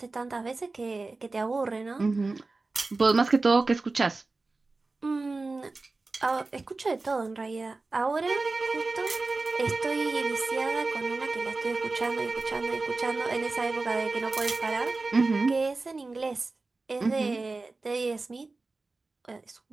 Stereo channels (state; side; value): quieter; left; 3.6 dB